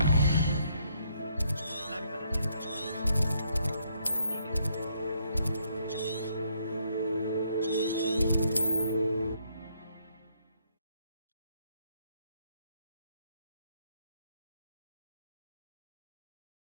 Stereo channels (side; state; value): both; inverted; correlation -0.72